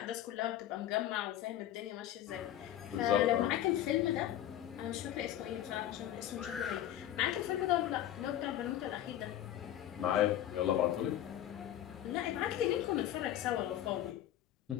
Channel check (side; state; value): right; quieter; 12.2 dB